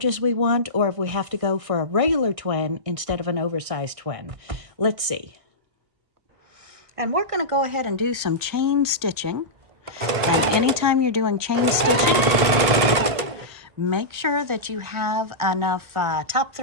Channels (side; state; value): left; late; 1.6 ms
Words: as we want, or if we have to go for a regular twin instead of an oversized twin. Let's see. And we're going to go ahead and do some chain stitching. And anytime you're doing chain stitching, make sure that you have enough top